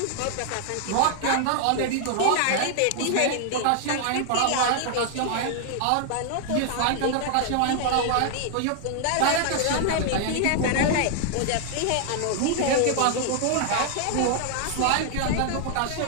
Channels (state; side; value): different; both; correlation 0.00